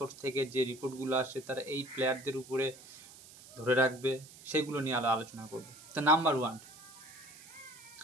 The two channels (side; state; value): right; noise; hiss, 19 dB below the sound